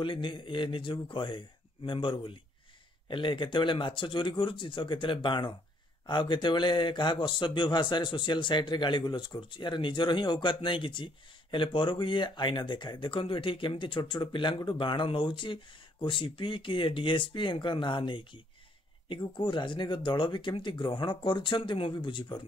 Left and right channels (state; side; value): normal; both; correlation 0.67